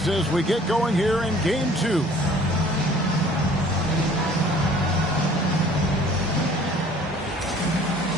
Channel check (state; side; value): normal; both; correlation 0.52